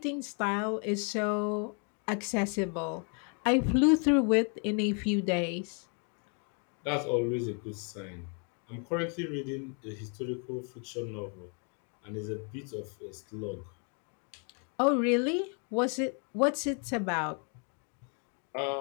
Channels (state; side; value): quieter; right; 39.9 dB